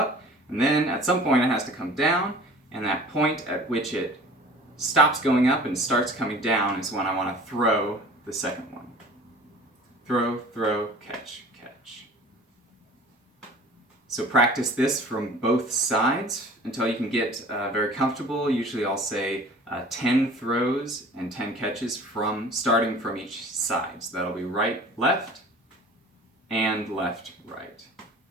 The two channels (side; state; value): both; normal; correlation 0.45